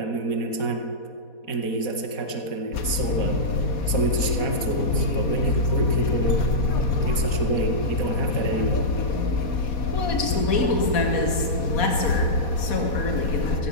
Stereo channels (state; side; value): late; right; 4.2 ms